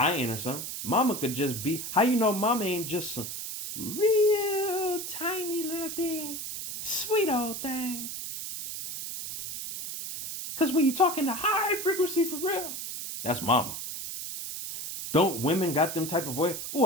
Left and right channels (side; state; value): right; noise; hiss, 7 dB below the sound